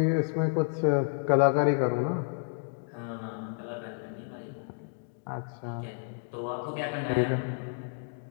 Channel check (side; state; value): right; silent; digital silence